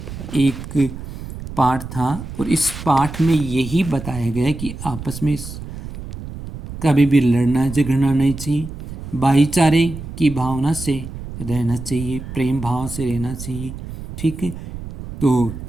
एक पाठ था, और इस पाठ में यही बताया गया है कि आपस में कभी भी लड़ना झगड़ना नहीं चाहिए, भाईचारे की भावना से रहना चाहिए, प्रेम भाव से रहना चाहिए। ठीक है, तो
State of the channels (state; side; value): noise; right; rumble, 10 dB below the sound